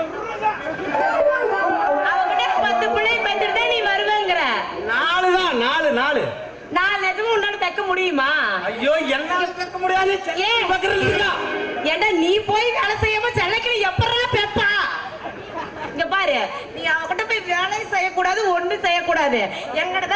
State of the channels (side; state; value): both; identical; correlation 1.00